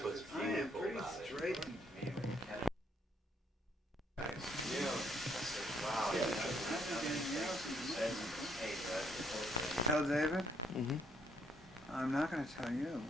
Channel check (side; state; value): both; normal; correlation 0.70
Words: what's I am beautiful pretty about it. straight. Tell David? Mm-hmm. I'm not going to tell you.